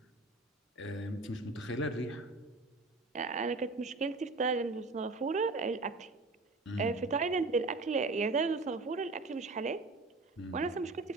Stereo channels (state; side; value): quieter; left; 3.4 dB